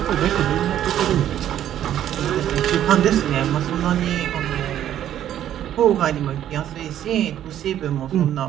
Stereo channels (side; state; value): left; quieter; 11.2 dB